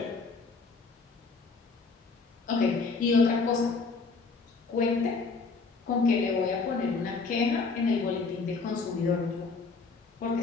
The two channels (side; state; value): right; quieter; 4.4 dB